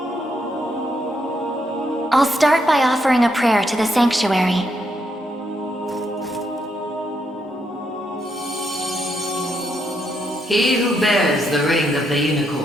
I'll start by offering a prayer to the Sanctuary. He who bears the ring of the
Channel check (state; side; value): normal; both; correlation 0.78